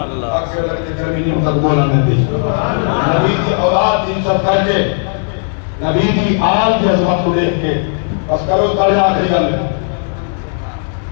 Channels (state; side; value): silent; right; 65 dB below the other